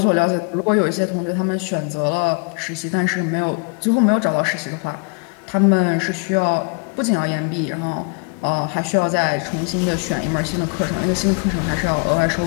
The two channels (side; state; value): right; quieter; 35.3 dB